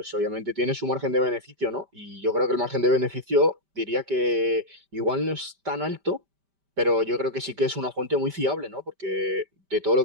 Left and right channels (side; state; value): left; late; 5.1 ms